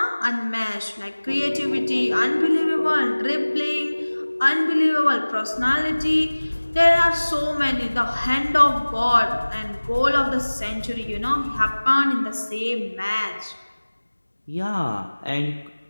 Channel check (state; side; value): inverted; both; correlation -1.00